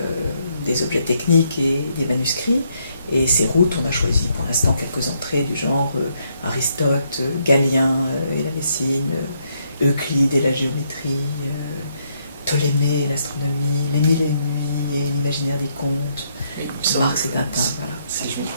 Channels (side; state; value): both; inverted; correlation -0.74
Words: des objets techniques et des manuscrits. Et ces routes, on a choisi pour l'instant quelques entrées du genre Aristote, Galien et la médecine, Euclide et la géométrie, Ptolémée et l'astronomie, Les Mille et Une Nuits et l'imaginaire des contes, Marx et Tintin. Voilà.